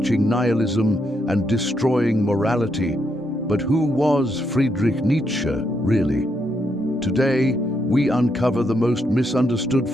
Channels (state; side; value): normal; both; correlation 0.78